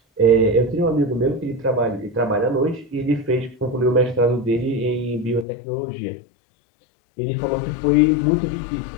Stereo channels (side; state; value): right; drops out; at 5.5 s